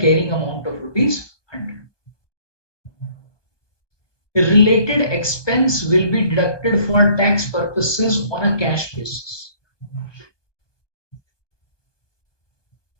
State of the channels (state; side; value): late; right; 1.2 ms